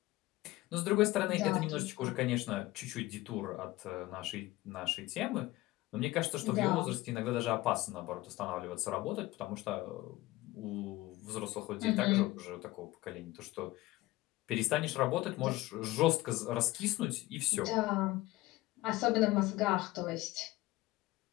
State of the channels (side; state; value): right; quieter; 18.5 dB